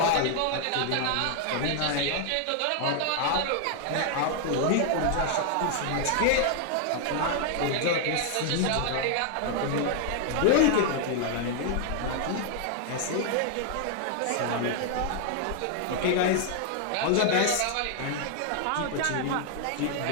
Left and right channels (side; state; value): both; different; correlation 0.00